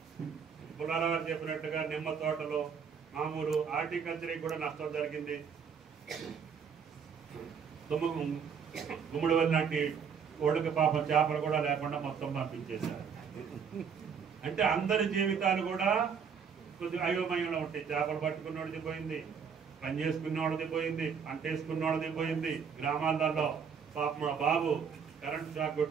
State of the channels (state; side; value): quieter; left; 6.7 dB